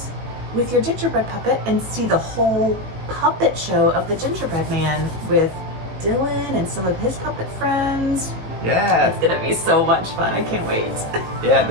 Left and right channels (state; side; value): late; left; 18 ms